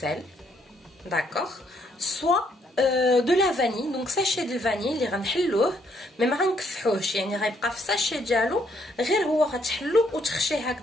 d'accord, soit de la vanille, donc sachet de vanille اللي غنحلوه مي ما غنكفحوهش يعني غيبقى في الساشي ديالو غير هو غتحلو وتخشيه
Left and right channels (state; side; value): normal; both; correlation 0.70